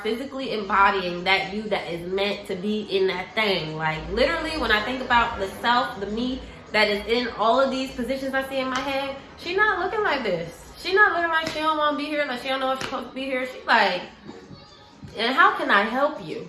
physically embodying that you that is meant to be in that thing. Like, literally, when I think about the self, the me that is in all of these positions I see in my head, she not looking like this. She not looking like she don't want to be here, like she don't know if she's supposed to be here. She like, and how can I help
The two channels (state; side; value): identical; both; correlation 1.00